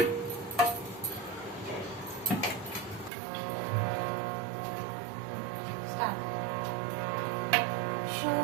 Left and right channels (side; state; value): left; drops out; at 3.1 s